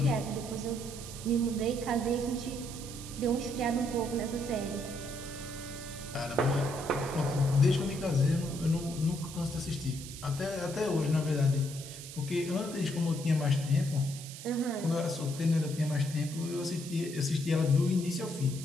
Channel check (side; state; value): right; noise; hiss, 12 dB below the sound